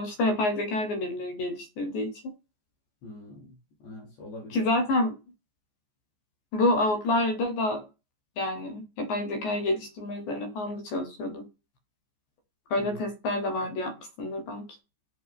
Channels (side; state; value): right; late; 14 ms